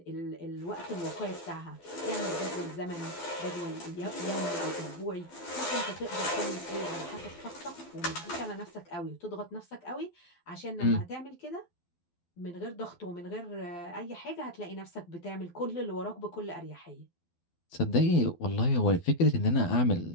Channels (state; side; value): late; right; 12 ms